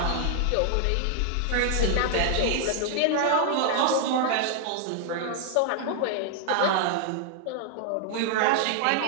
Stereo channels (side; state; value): both; different; correlation 0.00